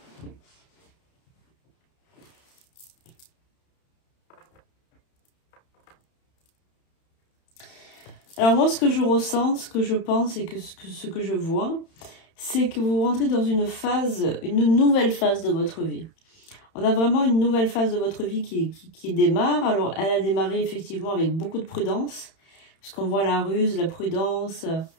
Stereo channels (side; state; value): right; late; 31 ms